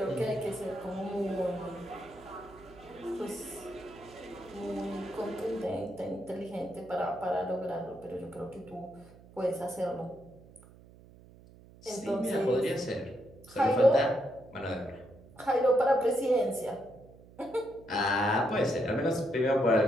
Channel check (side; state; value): right; noise; hum, 22 dB below the sound